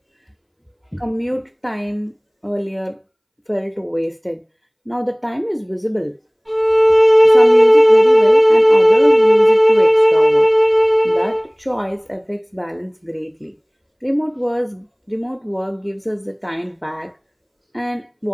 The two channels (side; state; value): both; identical; correlation 1.00